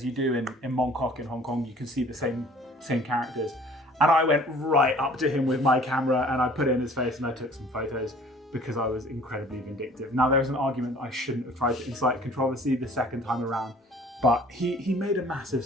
you do in Mong Kok in Hong Kong. You can see the same characters. And I went right up to him with my camera and I put it in his face and I took some photos because I was incredibly vindictive. Now, there's an argument that I shouldn't have tried to incite controversy the second time around, but he made a massive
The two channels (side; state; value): both; normal; correlation 0.51